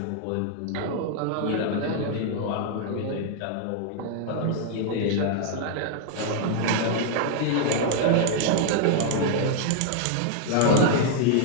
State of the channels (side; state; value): both; different; correlation 0.00